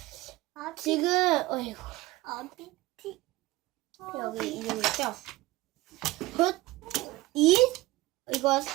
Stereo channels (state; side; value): quieter; left; 19.3 dB